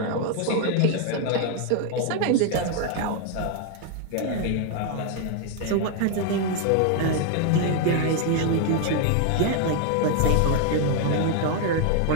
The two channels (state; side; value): different; both; correlation 0.00